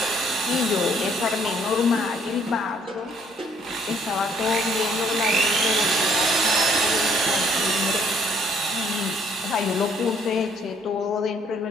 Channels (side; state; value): both; normal; correlation 0.64